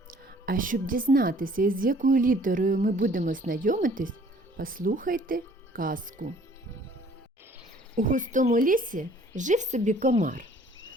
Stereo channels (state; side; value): normal; both; correlation 0.56